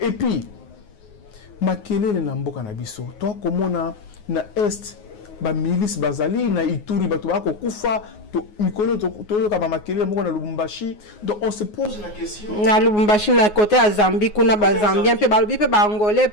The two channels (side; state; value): right; late; 9.5 ms